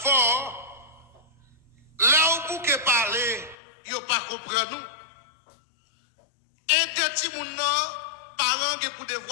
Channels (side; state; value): right; drops out; at 3.6 s